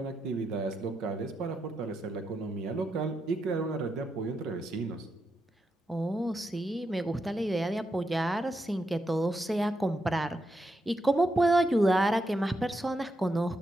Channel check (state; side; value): normal; both; correlation 0.84